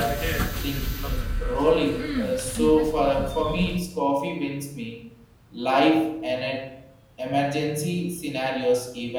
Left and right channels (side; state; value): both; identical; correlation 1.00